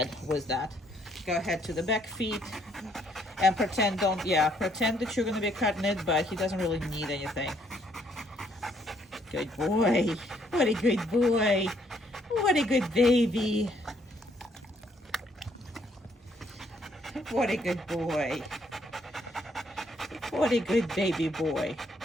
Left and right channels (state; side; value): normal; both; correlation 0.68